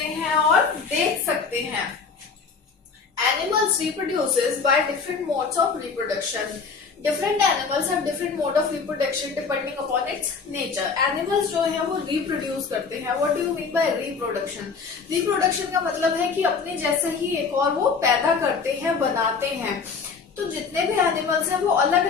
हैं और देख सकते हैं। Animals reproduces by different modes of reproduction. Different animals have different mode of reproduction depending upon its nature. Animals जो है वो reproduce करते हैं. What do you mean by reproduction? Reproduction का मतलब है कि अपने जैसा ही एक और वो पैदा करते हैं, बनाते हैं। तो जितने भी एनिमल्स हैं वो अलग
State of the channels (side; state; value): right; quieter; 5.2 dB